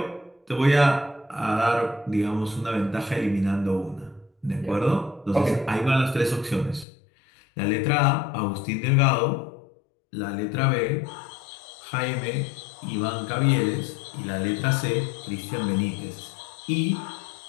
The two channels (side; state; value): right; drops out; at 6.9 s